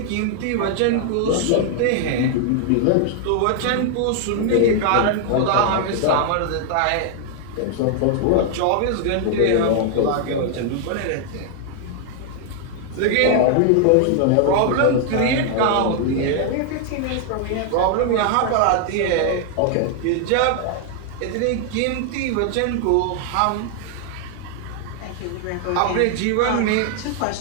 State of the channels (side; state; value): both; different; correlation 0.00